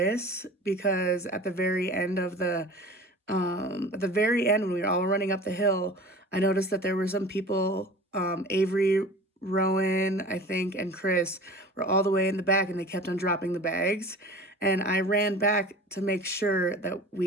because at the very end when we were all running up the hill, I noticed that there were some people, Avery, Rowan, I think, and Chris were all the way in the back and they kept on dropping the bags. And I ran back to make sure that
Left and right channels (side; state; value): both; normal; correlation 0.39